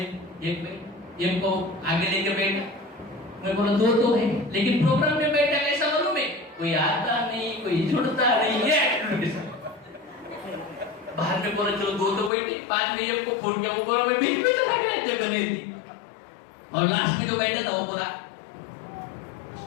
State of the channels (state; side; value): drops out; right; at 12.3 s